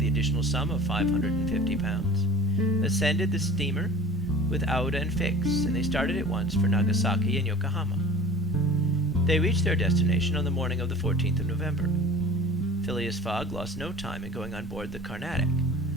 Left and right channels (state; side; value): normal; both; correlation 0.42